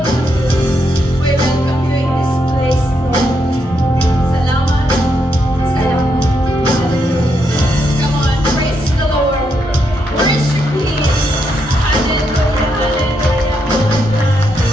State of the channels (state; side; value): normal; both; correlation 0.79